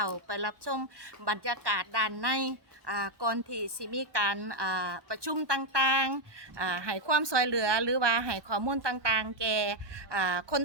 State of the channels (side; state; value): left; late; 1.2 ms